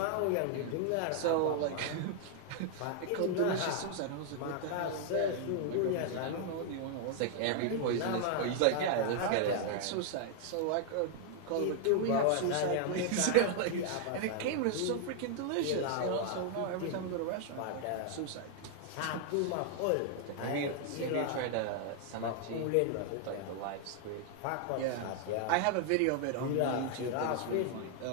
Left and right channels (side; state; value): both; different; correlation 0.00